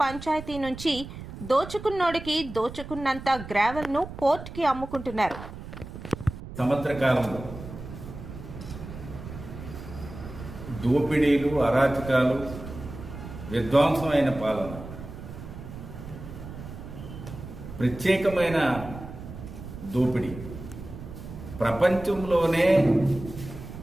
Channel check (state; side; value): noise; right; rumble, 12 dB below the sound